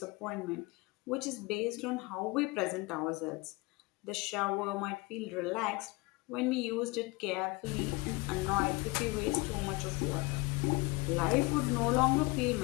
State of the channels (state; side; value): quieter; right; 24.8 dB